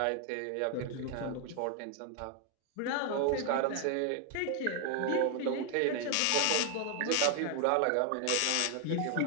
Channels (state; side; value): different; both; correlation 0.00